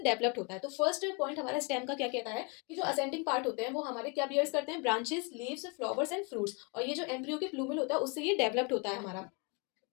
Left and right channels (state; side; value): quieter; right; 32.0 dB